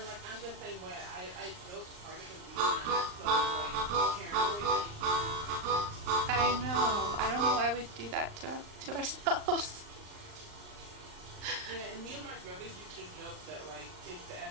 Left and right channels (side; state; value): left; late; 39 ms